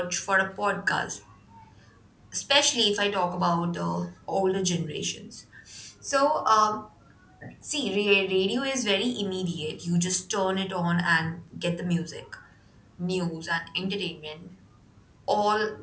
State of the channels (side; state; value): both; identical; correlation 1.00